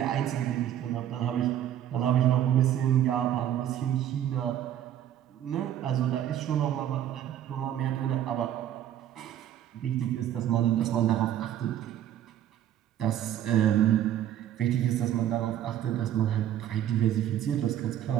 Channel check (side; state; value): left; quieter; 11.2 dB